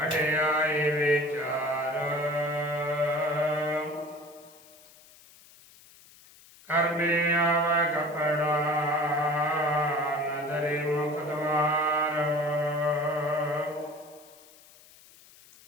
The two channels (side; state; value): left; noise; hiss, 24 dB below the sound